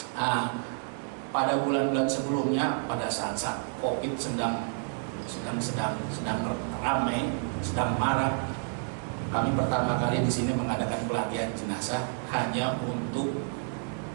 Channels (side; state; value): left; silent; 58 dB below the other